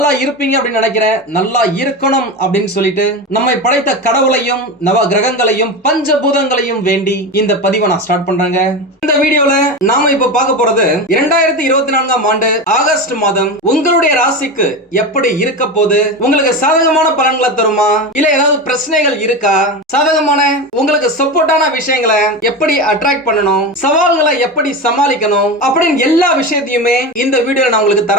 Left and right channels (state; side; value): normal; both; correlation 0.22